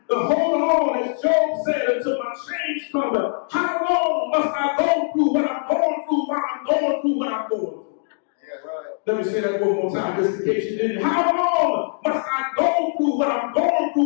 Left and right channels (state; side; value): silent; right; digital silence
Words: to hold on, as Job said, until my change comes. How long must I go through what I'm going through while I'm going through what I'm going through? Yeah, right. Let me say that one more time, just in case you didn't. How long must I go through what I'm going